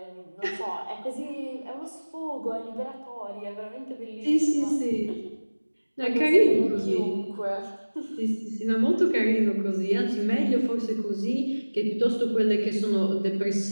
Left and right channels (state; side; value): inverted; both; correlation -1.00